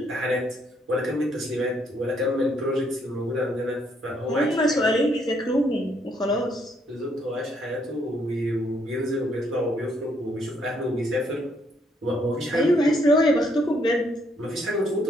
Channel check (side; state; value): both; normal; correlation 0.71